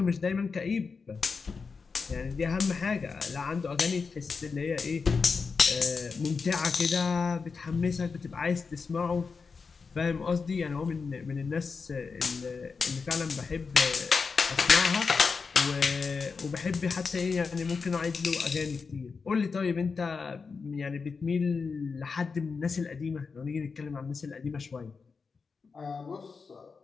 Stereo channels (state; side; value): quieter; right; 5.0 dB